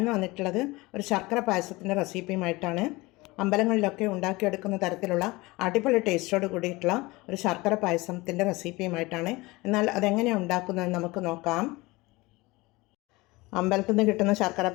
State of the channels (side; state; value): right; quieter; 22.2 dB